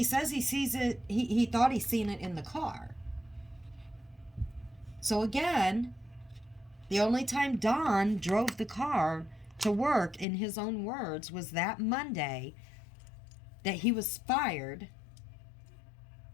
says he sees it, he thought he seen it in the car. So again, the only time Don drove the car to work, in his own words, was that Monday that he was fired.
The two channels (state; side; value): drops out; right; at 10.2 s